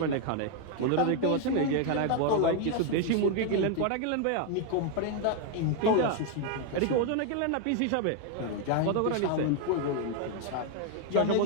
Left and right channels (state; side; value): different; both; correlation 0.01